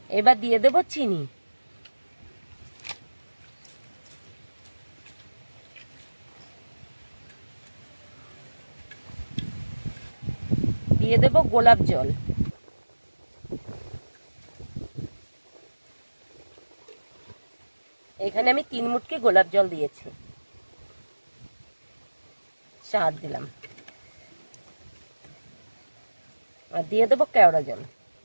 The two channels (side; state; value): both; inverted; correlation -1.00